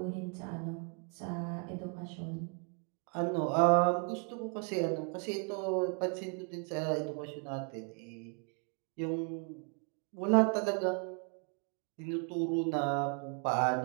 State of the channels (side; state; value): left; quieter; 38.2 dB